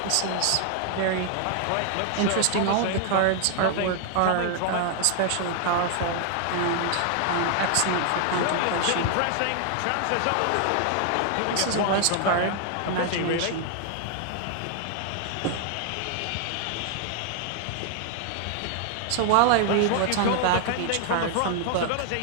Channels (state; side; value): different; both; correlation 0.00